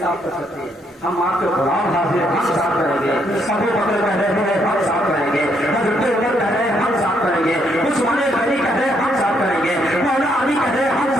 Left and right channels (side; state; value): both; normal; correlation 0.73